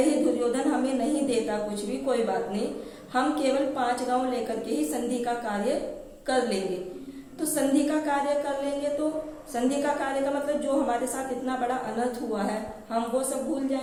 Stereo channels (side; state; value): both; identical; correlation 1.00